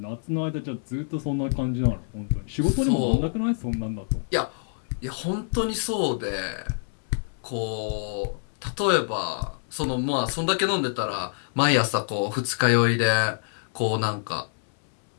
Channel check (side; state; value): right; silent; 61 dB below the other